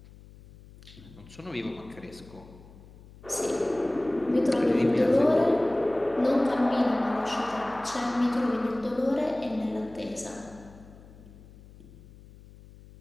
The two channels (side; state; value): left; noise; hum, 21 dB below the sound